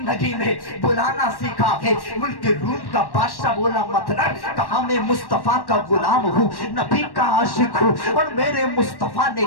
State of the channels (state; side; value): late; right; 1.1 ms